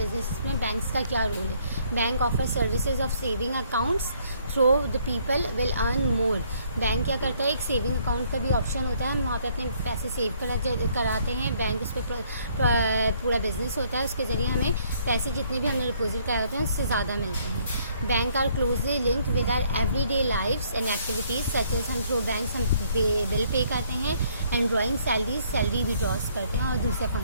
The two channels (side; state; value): both; inverted; correlation -0.65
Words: में बैंक्स का क्या रोल है? Bank offer services of saving accounts through the people will earn more. Bank क्या करता है? एक सेविंग अकाउंट का भी ऑप्शन होता है, हम वहाँ पे अपने पैसे सेव कराते हैं. बैंक उस पर पूरा बिजनेस होता है, उसके ज़रिए हमें पैसे जितने भी हमने डिपॉजिट कराए होते हैं उससे ज़्यादा मिलते हैं. Bank are closely linked with our everyday lifes and activities such as हम थ्रू बैंक्स हम बिल पे करते हैं, एंड ड्रॉइंग सैलरी विड्रॉज करते हैं और दूसरे